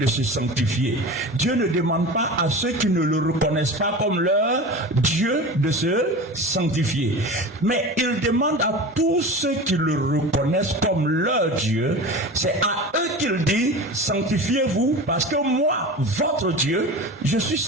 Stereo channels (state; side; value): normal; both; correlation 0.32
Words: se sanctifier. Dieu ne demande pas à ceux qui ne le reconnaissent pas comme leur Dieu de se sanctifier. Mais il demande à tous ceux qui le reconnaissent comme leur Dieu, c'est à eux qu'il dit, sanctifiez-vous parce que moi, votre Dieu, je suis